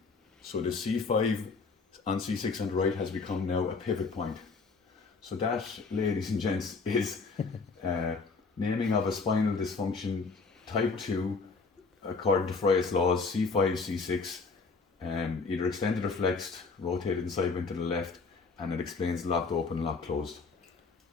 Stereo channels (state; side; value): quieter; right; 4.5 dB